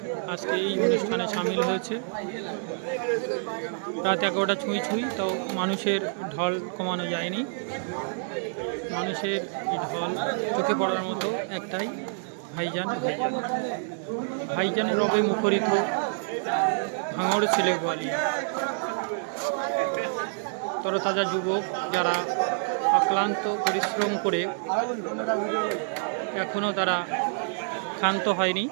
আজকে এই অনুষ্ঠানে সামিল হয়েছে। রাত 11টা ছুঁই ছুঁই, তাও মানুষের ঢল কমানো যায়নি। মানুষের এই ঢল চোখে পড়ার মতো একটাই, ভাইজান ভাইজান ভাইজানের রবে মুখরিত ভাঙড় ছেলেগোয়ালিয়া। তরতাজা যুবক যারা অক্লান্ত পরিশ্রম করে এখনও তারা ক্ষান্ত হয়নি,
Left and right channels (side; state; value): left; silent; digital silence